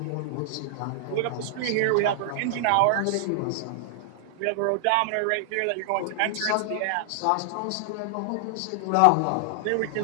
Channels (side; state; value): both; different; correlation 0.00